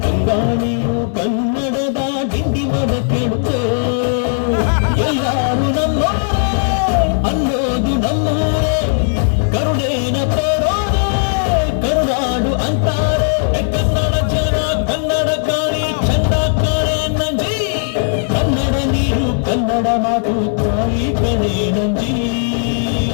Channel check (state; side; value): silent; right; 67 dB below the other